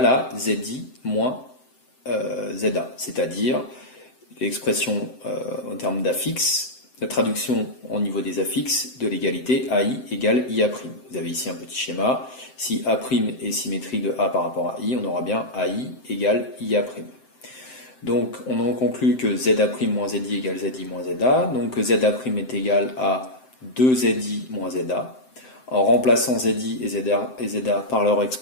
à ZI moins ZA, c'est-à-dire l'expression en termes d'affixe, la traduction au niveau des affixes de l'égalité AI égale IA'. Vous avez ici un petit schéma. Si A' est symétrique de A par rapport à I, on aura bien AI égale IA'. Donc on en conclut que ZA' moins ZI égale ZI moins ZA, donc que ZA' est égal à 2ZI moins ZA. En remplaçant ZI et ZA par leur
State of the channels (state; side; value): late; right; 7.8 ms